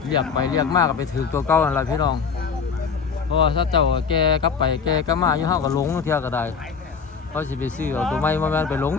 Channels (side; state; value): right; quieter; 5.9 dB